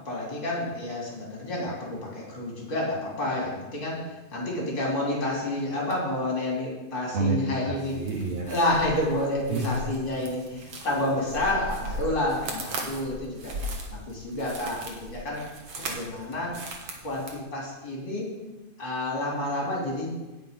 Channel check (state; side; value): late; left; 2.5 ms